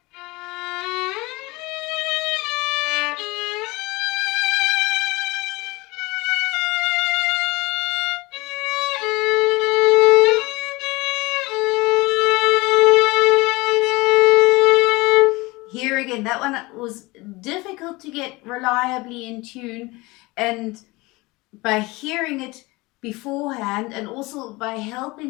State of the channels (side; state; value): right; quieter; 22.9 dB